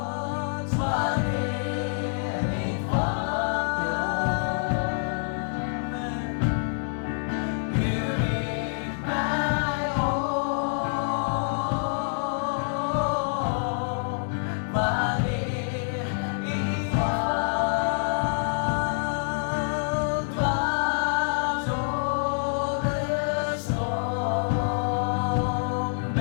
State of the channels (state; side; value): silent; right; digital silence